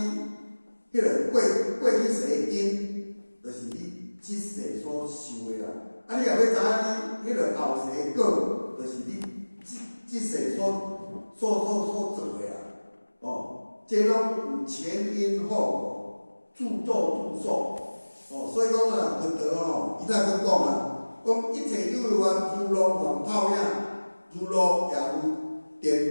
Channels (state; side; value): inverted; both; correlation -1.00